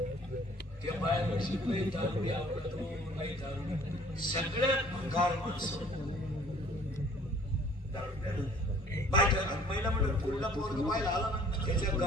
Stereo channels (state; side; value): normal; both; correlation 0.54